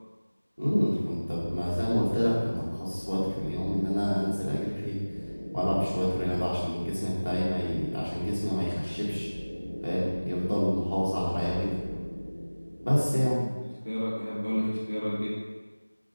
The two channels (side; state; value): both; inverted; correlation -1.00